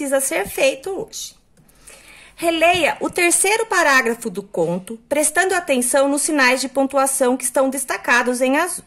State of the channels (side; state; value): both; identical; correlation 1.00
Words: ser feito hoje. Releia o terceiro parágrafo do conto, prestando atenção nos sinais de pontuação que estão destacados em azul.